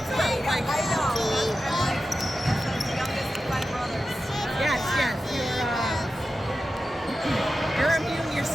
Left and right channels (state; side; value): normal; both; correlation 0.92